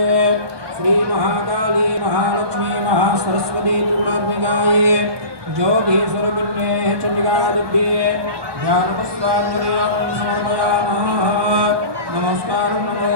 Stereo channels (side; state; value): left; late; 1.2 ms